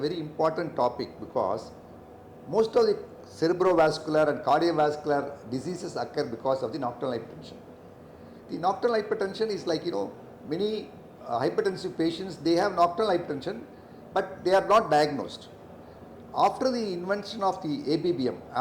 important topic because most of the cerebrovascular and cardiovascular diseases occur because of the nocturnal hypertension. The nocturnal hypertension is like, many hypertensive patients, they have nocturnal hypertension, but they are not diagnosed. After the invention of the ABBM,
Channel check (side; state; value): both; identical; correlation 1.00